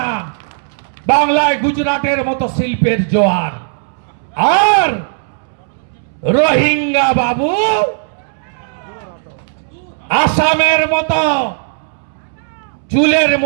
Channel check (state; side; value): silent; left; 69 dB below the other